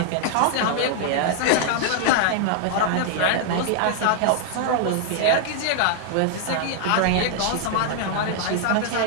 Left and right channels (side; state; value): both; different; correlation -0.01